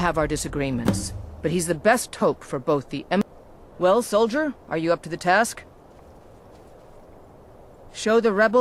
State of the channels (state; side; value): identical; both; correlation 1.00